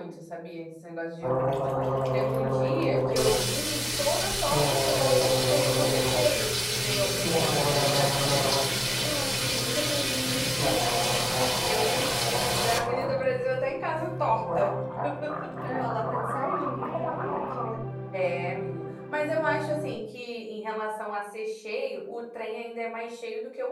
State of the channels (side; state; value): both; identical; correlation 1.00